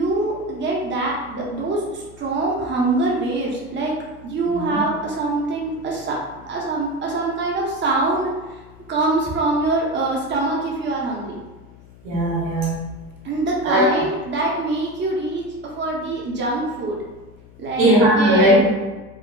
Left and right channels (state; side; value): noise; left; hum, 22 dB below the sound